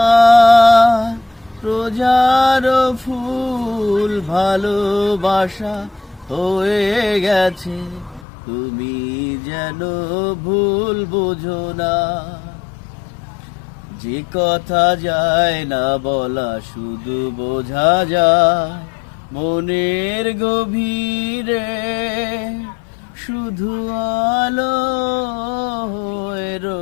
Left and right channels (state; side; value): drops out; right; at 8.2 s